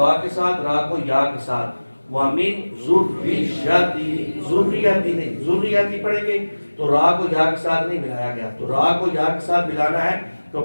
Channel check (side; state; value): both; inverted; correlation -1.00